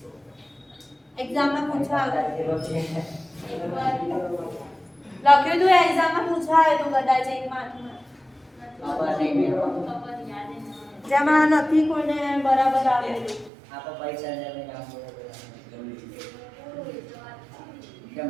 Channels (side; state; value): left; drops out; at 13.5 s